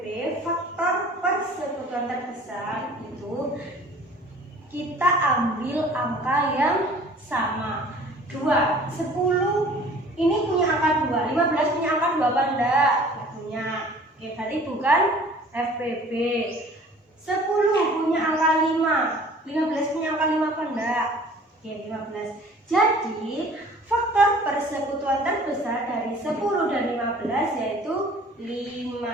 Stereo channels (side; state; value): both; normal; correlation 0.49